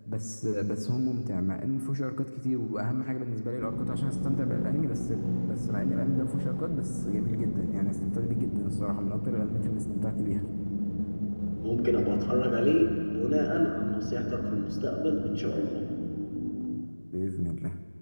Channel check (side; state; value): both; inverted; correlation -1.00